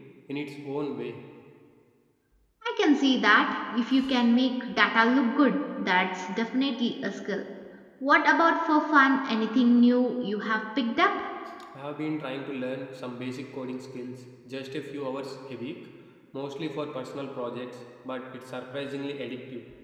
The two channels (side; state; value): both; identical; correlation 1.00